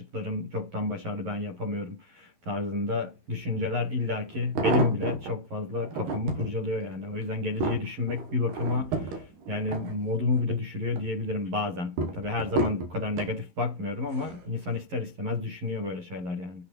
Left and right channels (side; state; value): left; late; 11 ms